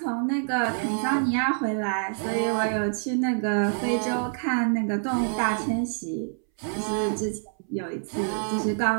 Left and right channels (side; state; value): left; silent; 61 dB below the other